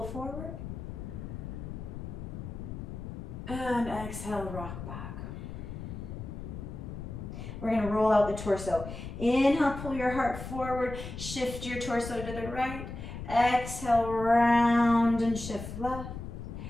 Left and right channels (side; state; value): left; noise; rumble, 8 dB below the sound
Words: forward. And exhale, rock back. We're going to roll out the torso. Inhale, pull your heart forward, shift your torso to the right. Exhale, round and shift left.